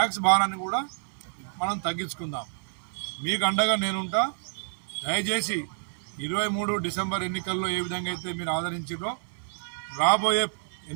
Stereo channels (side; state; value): left; silent; 57 dB below the other